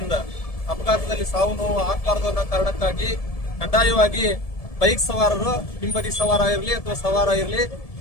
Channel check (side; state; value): right; late; 1.7 ms